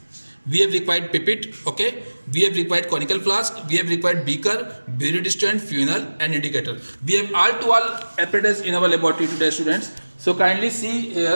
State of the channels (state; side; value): inverted; both; correlation -1.00